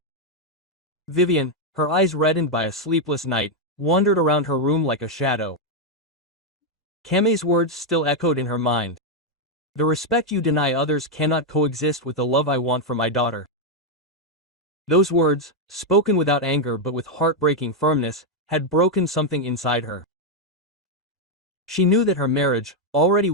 Vivian, her eyes reddened by a sleepless night, wandered around her room like a shadow. Kame's words still echoed in her mind. "The respect you deny others cannot coexist with the love I want for my daughter." Those words, spoken without anger but with heartbreaking firmness, had broken something inside her. She knew that her marriage, already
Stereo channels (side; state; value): both; normal; correlation 0.01